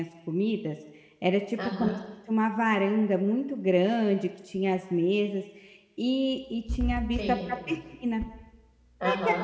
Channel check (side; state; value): both; identical; correlation 1.00